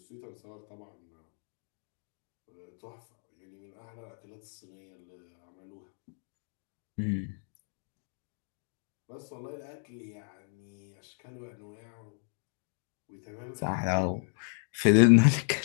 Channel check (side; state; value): right; silent; 55 dB below the other